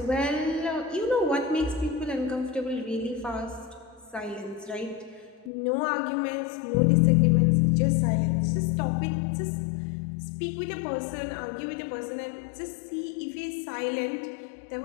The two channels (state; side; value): drops out; right; at 5.5 s